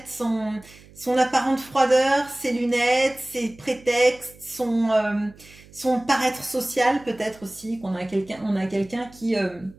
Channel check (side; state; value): right; noise; hum, 23 dB below the sound